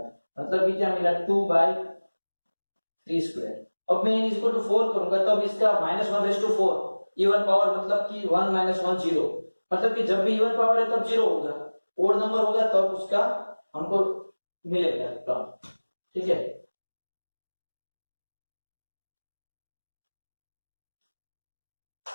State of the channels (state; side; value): inverted; both; correlation -1.00